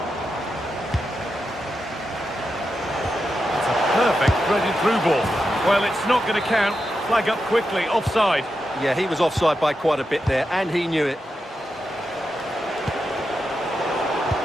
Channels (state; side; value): normal; both; correlation 0.88